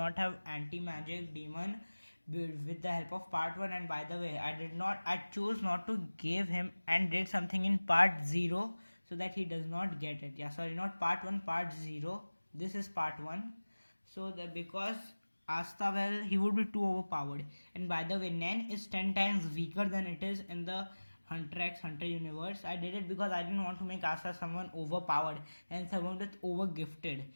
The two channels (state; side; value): inverted; both; correlation -1.00